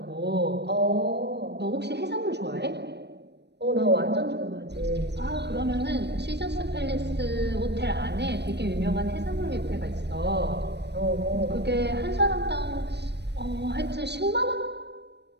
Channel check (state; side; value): late; left; 0.50 ms